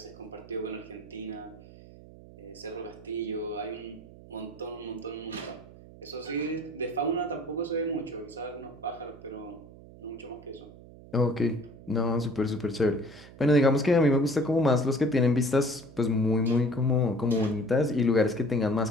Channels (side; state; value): right; noise; hum, 19 dB below the sound